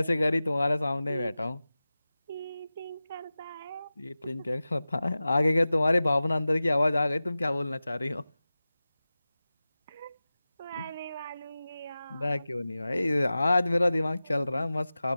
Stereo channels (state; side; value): inverted; both; correlation -0.96